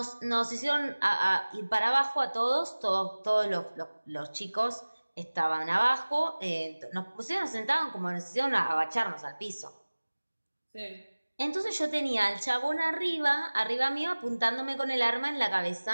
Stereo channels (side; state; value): both; inverted; correlation -1.00